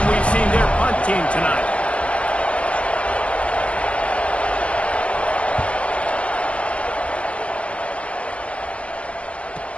we've seen their punt team tonight.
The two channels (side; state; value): right; late; 0.062 ms